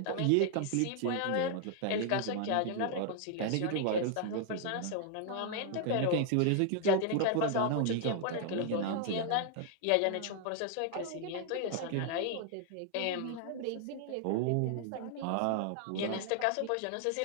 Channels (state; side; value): different; both; correlation 0.00